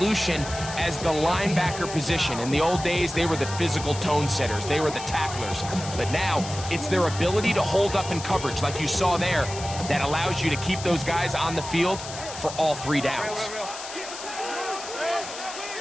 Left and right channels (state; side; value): noise; left; hiss, 11 dB below the sound